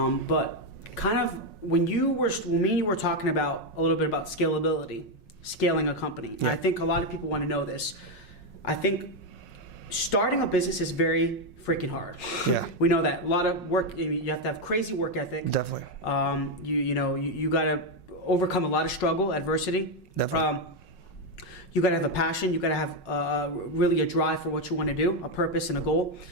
kind of when me and you were talking about a little bit about scalability, scaling a company. Yeah. I think a lot of people want to know this. I think starting a business is very freaking hard. Yeah. We know that. A lot of work, you have to have crazy work ethic. Definitely. You got to overcome a lot of struggle, adversity. Definitely. You got to have a passion. You got to have really a drive for what you want to do, a purpose and a goal,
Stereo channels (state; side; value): late; right; 5.5 ms